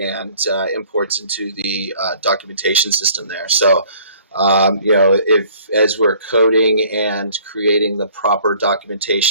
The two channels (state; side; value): inverted; both; correlation -0.55